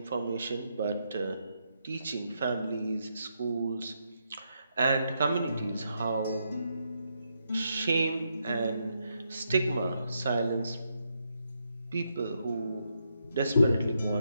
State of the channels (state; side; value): inverted; both; correlation -0.80